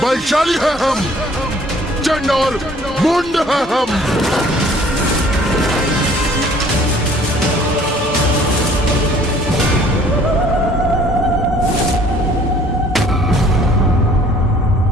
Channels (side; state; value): both; normal; correlation 0.55